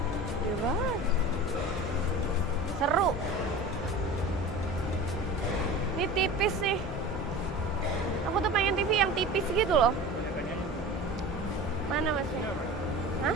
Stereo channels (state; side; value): normal; both; correlation 0.35